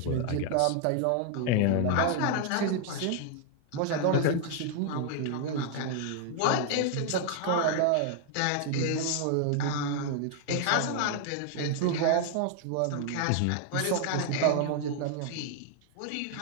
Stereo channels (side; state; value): both; different; correlation 0.00